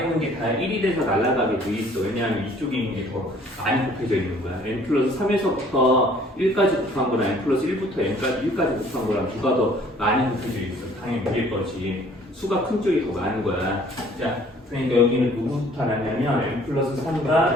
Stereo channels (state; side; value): normal; both; correlation 0.56